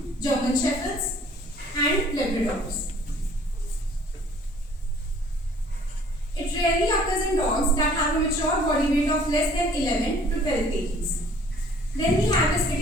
German shepherds and labradors. It rarely occurs in dogs that have a mature body weight of less than 11 to 12 kg. Then we have its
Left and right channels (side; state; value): both; normal; correlation 0.55